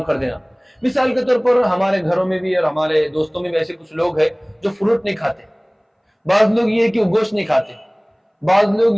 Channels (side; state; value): both; identical; correlation 1.00